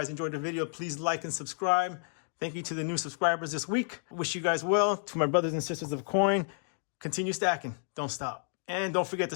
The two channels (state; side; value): silent; right; 57 dB below the other